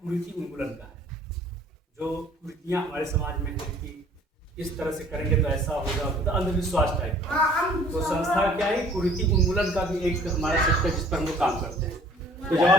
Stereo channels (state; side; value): normal; both; correlation 0.53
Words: कुरीति उन्मूलन का है। जो कुरीतियाँ हमारे समाज में है कि इस तरह से करेंगे तो ऐसा होगा, तो अंधविश्वास टाइप का। तो संस्था क्या है, कुरीति उन्मूलन का भी एक हमारा सेक्टर जिस पर हम लोग काम करते हैं। तो जब